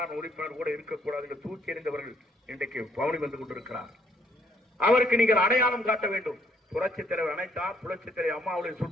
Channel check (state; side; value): normal; both; correlation 0.67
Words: உறுப்பினர் கூட இருக்கக்கூடாது என்று தூக்கி எறிந்தவர்கள் இன்றைக்கு பவனி வந்து கொண்டிருக்கிறார். அவருக்கு நீங்கள் அடையாளம் காட்ட வேண்டும். புரட்சித் தலைவர் அனைத்தார், புரட்சித் தலைவர் அம்மாவுடைய